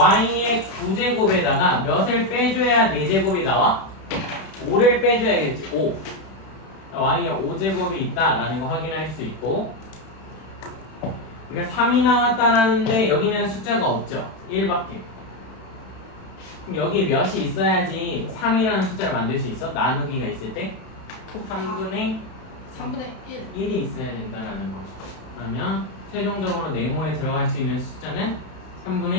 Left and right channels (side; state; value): right; late; 31 ms